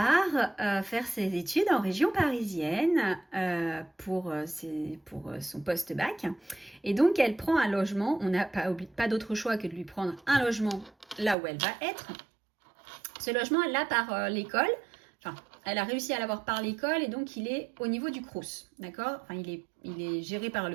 faire ses études en région parisienne pour son post-bac. Et donc, elle prend un logement. On n'a pas d'autre choix que de lui prendre un logement là où elle va être. Ce logement, elle l'a par l'école. Enfin, elle a réussi à l'avoir par l'école et donc il est au niveau du Crous, d'accord? Enfin, il est géré par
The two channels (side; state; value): left; drops out; at 11.4 s